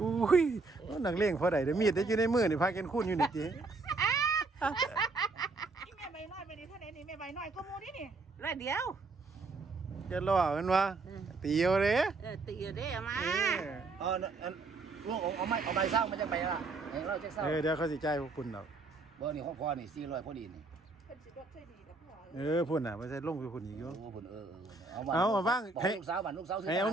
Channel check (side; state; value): left; quieter; 3.7 dB